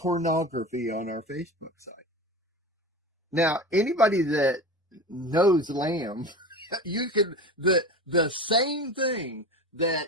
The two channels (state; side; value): normal; both; correlation 0.30